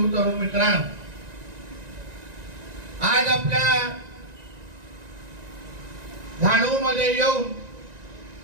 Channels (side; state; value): left; late; 1.9 ms